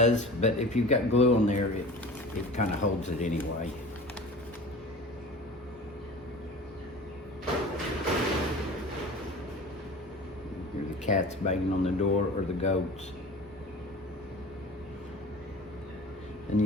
but if you've got glue on there, it kind of holds it anyway. Here's the cats banging on the door, or the goats. And you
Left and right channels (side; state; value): both; normal; correlation 0.39